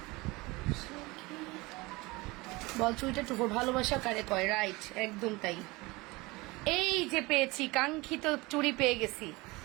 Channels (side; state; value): left; quieter; 23.0 dB